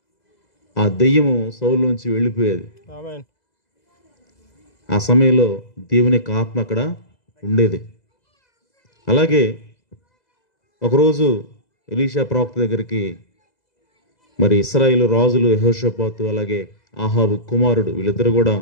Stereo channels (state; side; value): late; right; 2.0 ms